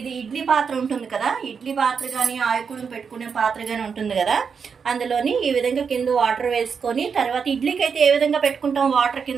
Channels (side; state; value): left; quieter; 6.1 dB